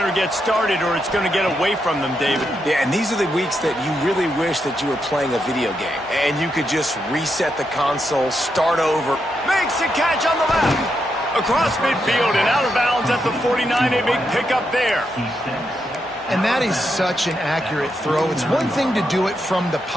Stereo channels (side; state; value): both; normal; correlation 0.83